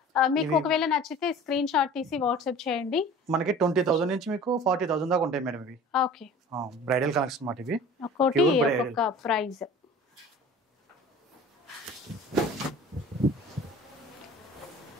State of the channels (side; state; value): both; normal; correlation 0.43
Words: మీకు ఒకవేళ నచ్చితే స్క్రీన్ షాట్ తీసి వాట్సాప్ చేయండి. మనకి 20,000 నుంచి మీకు 40,000 దాకా ఉంటాయి మేడం ఇవి. ఓకే, బ్రైడల్ కలెక్షన్ మాట ఇవి. ఒక్కోటి ఒక్కొక్క ప్రైస్.